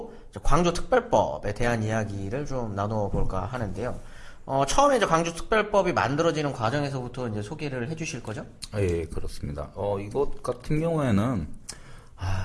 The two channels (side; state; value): both; identical; correlation 1.00